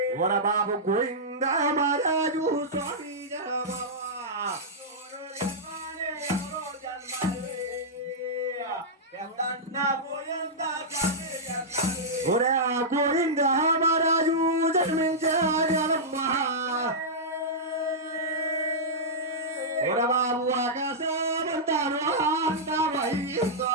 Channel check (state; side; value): normal; both; correlation -0.11